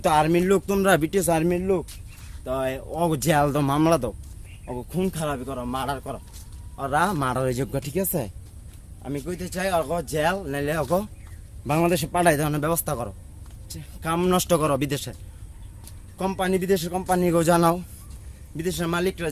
তো আর্মির লোক, তোমরা বিটিএস আর্মির লোক, তো অগো জেল দাও, মামলা দাও, অগো খুন খারাপি করো, মার্ডার করো, ওরা মার্ডারের যোগ্য, ঠিক আছে? আমি কইতে চাই অগো জেল নাইলে অগো বাংলাদেশে পাঠাই দেওয়ার ব্যবস্থা করো, কাম নষ্ট করো বিদেশে, কোম্পানি বিদেশের কোম্পানিকেও জানাও, বিদেশের মালিকরা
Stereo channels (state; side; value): identical; both; correlation 1.00